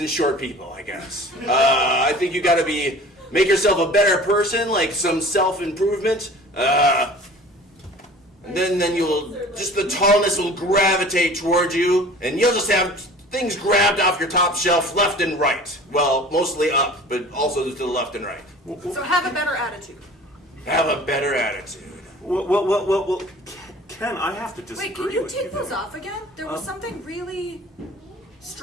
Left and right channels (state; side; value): normal; both; correlation 0.44